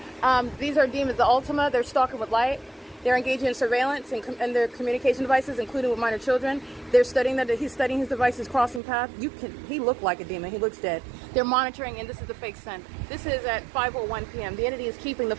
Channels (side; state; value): left; drops out; at 8.8 s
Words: These are demons, the Ultima. They're stalking with light. They're engaging in surveillance and their communication devices, including with minor children. They're studying that he's studying his devices, crossing path. He looked like a demon. He looks dead. They're monitoring, and this is the fake sun. This is at 5:01 p.m. The entity is keeping the